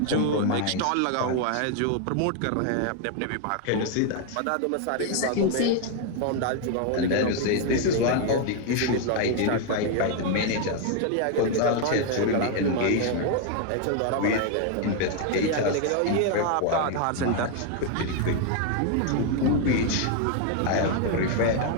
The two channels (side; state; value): both; different; correlation 0.00